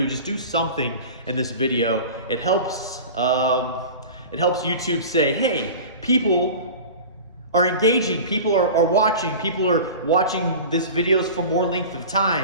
Just do something in this video. It helps YouTube say, hey, people are engaging, people are watching this videos for more length of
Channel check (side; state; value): both; inverted; correlation -0.35